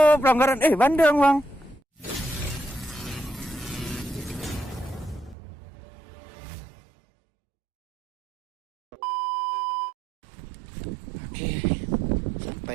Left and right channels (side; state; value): left; drops out; at 5.4 s